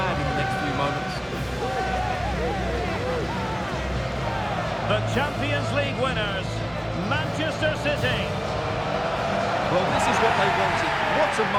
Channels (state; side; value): identical; both; correlation 1.00